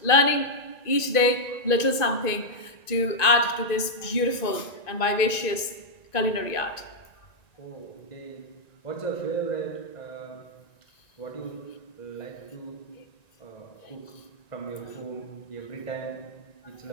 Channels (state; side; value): late; right; 1.9 ms